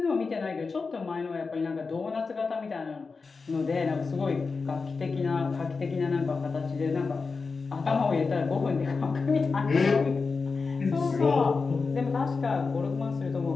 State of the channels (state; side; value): quieter; right; 4.5 dB